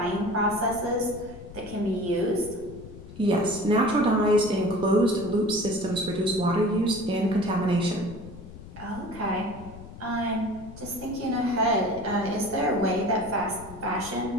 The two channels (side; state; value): left; noise; rumble, 15 dB below the sound